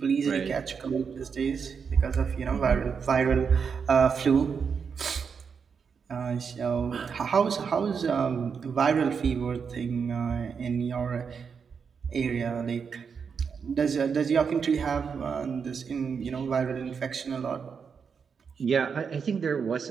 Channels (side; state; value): left; quieter; 6.2 dB